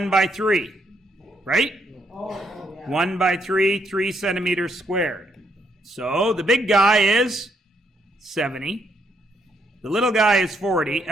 by 3, right? Oh, yeah. 1 by 3, 3 centimeters squared. So the big guy is 70. The little guy is 40.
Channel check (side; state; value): both; normal; correlation 0.74